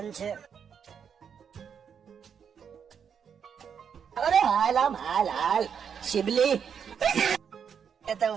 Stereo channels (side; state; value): left; quieter; 7.4 dB